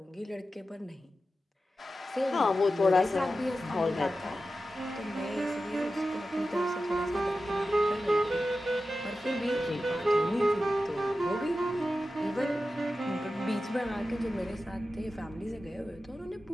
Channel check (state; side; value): normal; both; correlation 0.93